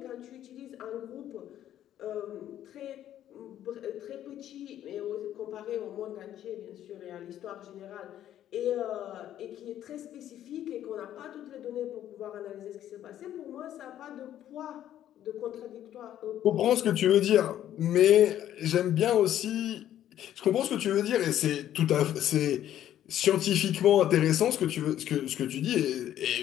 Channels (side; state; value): right; quieter; 11.6 dB